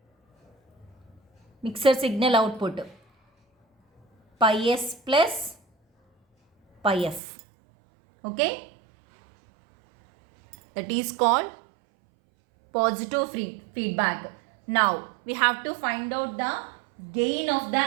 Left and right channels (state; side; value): drops out; left; at 7.2 s